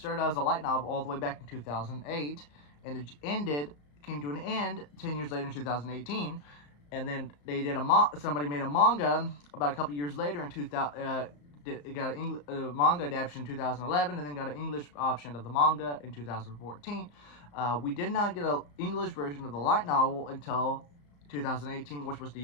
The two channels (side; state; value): right; late; 34 ms